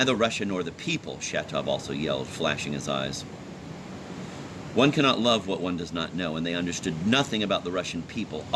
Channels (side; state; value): both; identical; correlation 1.00